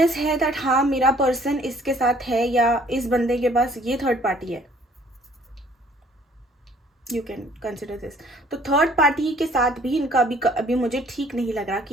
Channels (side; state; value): both; normal; correlation 0.58